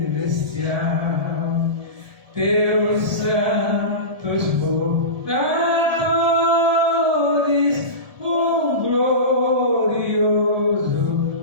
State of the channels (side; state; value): left; late; 1.7 ms